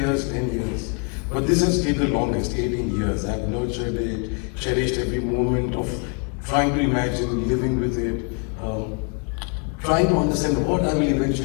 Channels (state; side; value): quieter; right; 36.4 dB